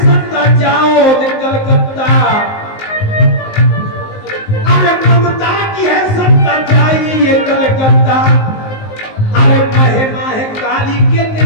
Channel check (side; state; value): right; late; 19 ms